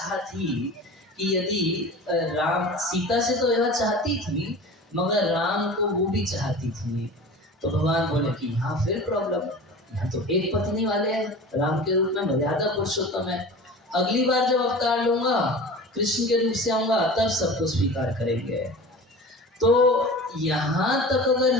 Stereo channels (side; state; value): both; normal; correlation 0.36